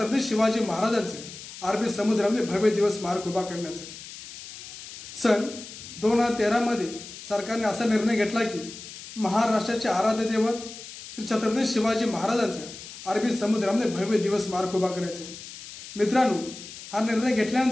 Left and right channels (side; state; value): left; noise; hiss, 14 dB below the sound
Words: शिवाजी महाराजांचे अरबी समुद्रामध्ये भव्य दिवस स्मारक उभा करण्याचे। सन 2013 मध्ये सरकारने असा निर्णय घेतला की महाराष्ट्राचे आराध्य दैवत श्री छत्रपती शिवाजी महाराजांचे अरबी समुद्रामध्ये भव्य दिवस स्मारक उभा करायचे। मित्रांनो, हा निर्णय